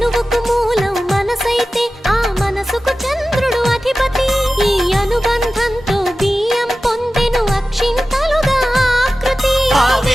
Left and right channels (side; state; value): both; normal; correlation 0.95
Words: మూలం మనసైతే ఆ మనసుకు చంద్రుడు అధిపతి ఈ అనుబంధంతో బియ్యం పొందెను అక్షింతలుగా ఆకృతి ఆ